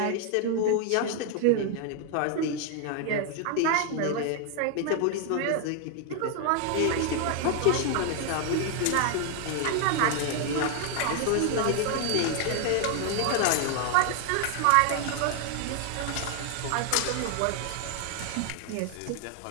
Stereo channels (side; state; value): both; different; correlation 0.00